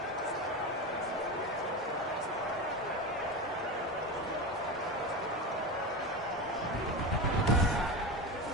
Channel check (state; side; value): normal; both; correlation 0.21